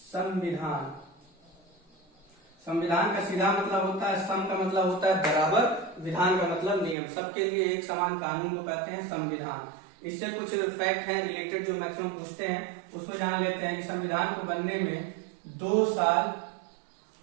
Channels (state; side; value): drops out; left; at 7.0 s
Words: संविधान का सीधा मतलब होता है सम, का मतलब होता है बराबर, विधान का मतलब नियम। सबके लिए एक समान कानून को कहते हैं संविधान। इससे कुछ फैक्ट हैं रिलेटेड जो मैक्सिमम पूछते हैं, उसको जान लेते हैं कि संविधान को बनने में 2 साल